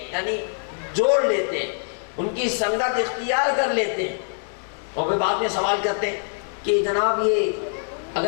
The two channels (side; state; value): right; silent; digital silence